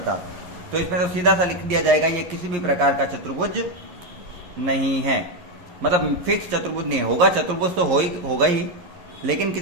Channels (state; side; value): late; left; 11 ms